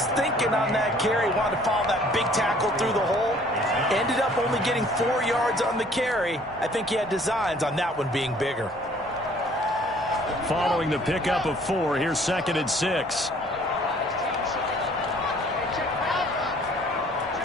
thinking on that carry. Wanted to follow that big tackle through the hole. Ended up only getting 4 yards on the carry. I think he had designs on that one being bigger. Following the pickup of 4, here's 2nd and 6.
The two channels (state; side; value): normal; both; correlation 0.56